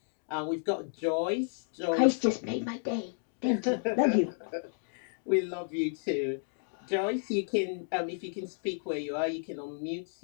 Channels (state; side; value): silent; right; digital silence